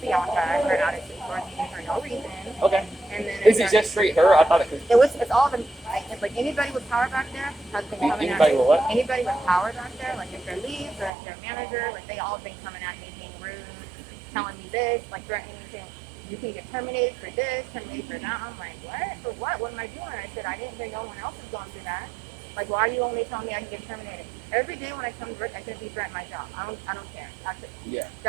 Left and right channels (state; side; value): drops out; left; at 11.1 s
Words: Bianca, her attitude towards me for no reason. Okay. And then Is it just straight her? I thought it was. it's all been, like anybody with power back there has been coming at Anybody me. with what? Anybody with power back there, like if they're leads or if they're manager, like they all been coming at me being rude, telling me this, like threatening me saying, you can get terminated for this, terminated for that. I'm like, what? For what? What am I doing? I said, I didn't hear no one else is going through that. Like, why are you only telling me I can get terminated? Every day when I come to work, I shouldn't be threatening my job. I don't care. Yeah.